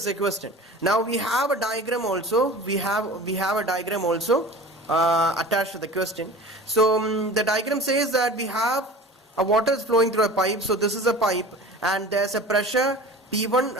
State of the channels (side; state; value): both; normal; correlation 0.39